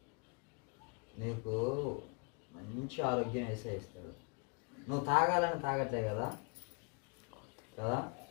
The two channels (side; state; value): right; quieter; 35.9 dB